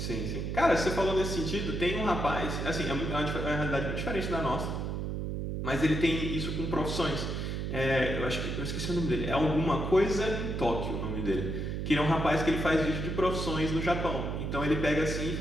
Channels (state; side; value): noise; right; hum, 3 dB below the sound